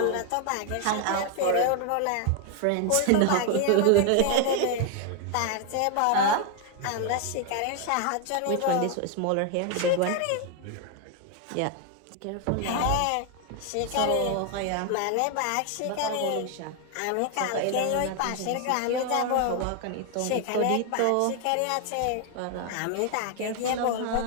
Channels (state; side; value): different; both; correlation 0.00